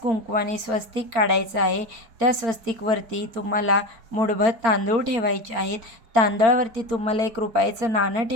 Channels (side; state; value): left; late; 4.4 ms